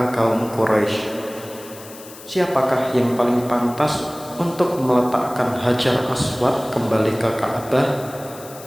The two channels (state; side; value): noise; left; hiss, 18 dB below the sound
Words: kaum Quraisy. Siapakah yang paling pantas untuk meletakkan Hajar Aswad kembali ke Ka'bah?